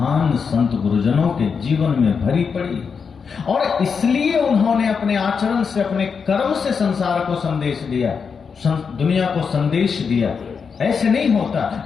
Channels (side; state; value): right; quieter; 5.9 dB